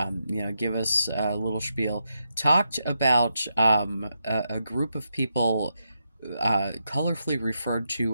Give us a little spiel. Talked about a group of people colorfully referred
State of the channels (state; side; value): inverted; both; correlation -0.85